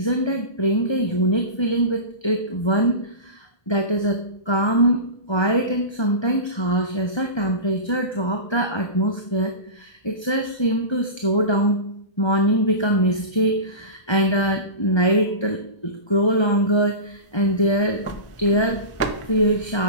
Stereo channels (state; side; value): late; right; 1.3 ms